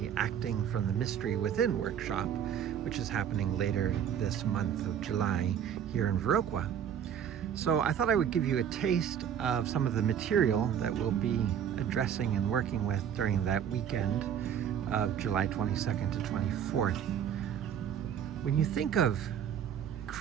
Acting from the Mystery Within workshop, which is happening later this month of July here in Viroqua. So I thought I would give you a taste of some of the material that we'll be addressing and working with during that weekend of July 22nd to 24th. When you think of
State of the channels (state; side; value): quieter; left; 8.8 dB